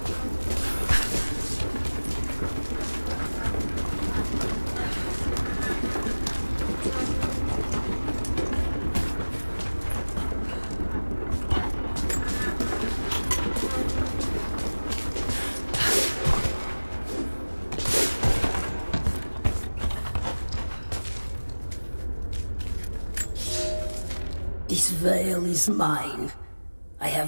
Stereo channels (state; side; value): inverted; both; correlation -1.00